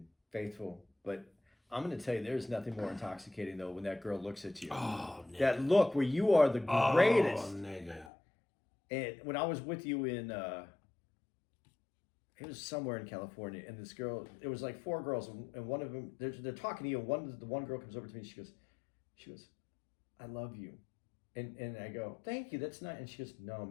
faithful, but I'm going to tell you, there's nothing more intoxicating though when that girl looks at you. Oh, nigga. That look where you are the greatest. Oh, nigga. And when I was with you in, it was somewhere in California, and this girl, it was like 4 girls, and one of them, they're talking to you, and the one girl comes over to me, and she goes, "I love you," and I go, "Thank you, that's nice," and she goes, "No,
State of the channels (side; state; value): right; drops out; at 8.1 s